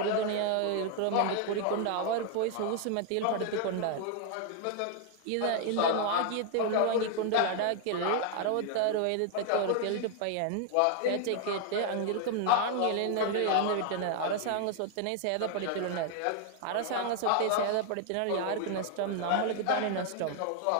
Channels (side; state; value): both; different; correlation 0.00